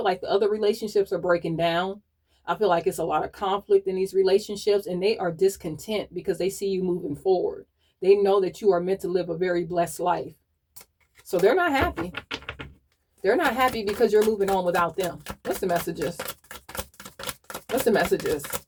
like the other relationships are breaking down. I feel like it's a lot of conflict in these relationships, and they are discontent because they see you moving forward. They know that you are meant to live a very blessed life. So they're not happy. They're not happy because you're moving on without them. What's the messages? What's the messages?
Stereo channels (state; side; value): identical; both; correlation 1.00